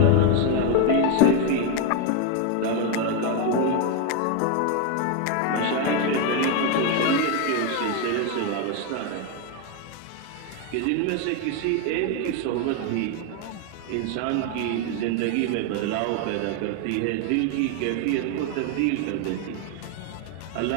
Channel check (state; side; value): different; both; correlation 0.01